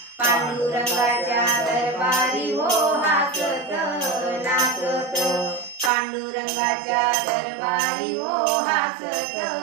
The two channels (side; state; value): left; drops out; at 5.9 s